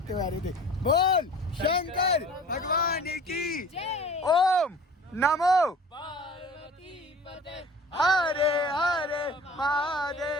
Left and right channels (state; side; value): normal; both; correlation 0.43